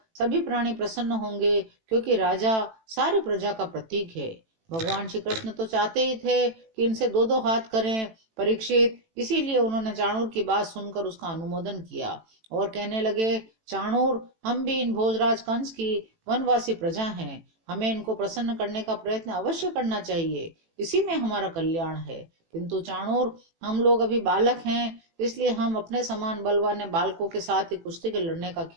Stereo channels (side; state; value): left; late; 18 ms